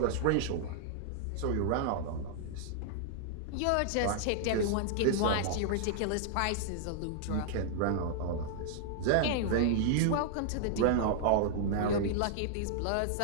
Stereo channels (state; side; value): different; both; correlation -0.01